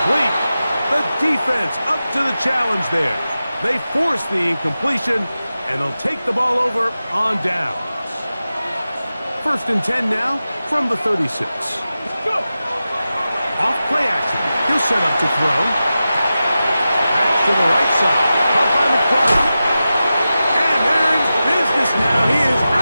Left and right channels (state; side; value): inverted; both; correlation -0.93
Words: The defense up to the challenge there. They force the incompletion, and they'll take the ball over on downs. First and 10 now from the 36. Off play action. He'll set up to throw. Back to the right side. Caught by McBride. And they're in business now. He is